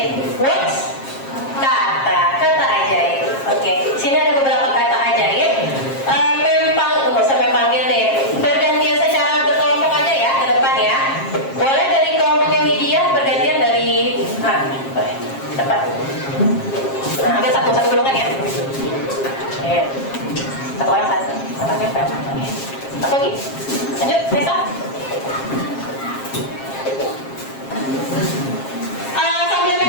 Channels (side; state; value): right; late; 7.4 ms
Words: Words? Kata ajaib. Oke. Sini ada beberapa kata ajaib. Nggak usah panggil deh. Bergantian secara berkelompok aja ya ke depan ya. Boleh dari kelompoknya Widya bergantian dari boleh. Cepat. Nah, ambil satu golongan ya. Satu orang satu. Satu nempel. Oke. Satu lagi. Lanjut, Nesa. Sambil